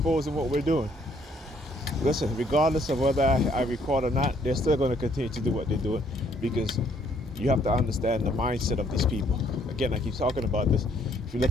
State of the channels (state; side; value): normal; both; correlation 0.66